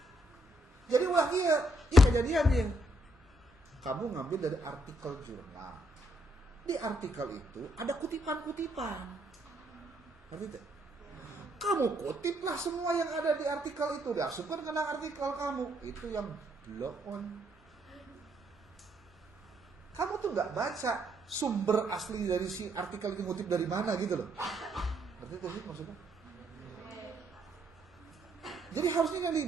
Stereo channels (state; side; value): normal; both; correlation 0.73